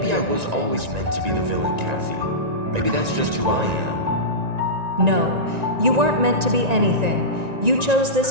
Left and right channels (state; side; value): late; left; 1.9 ms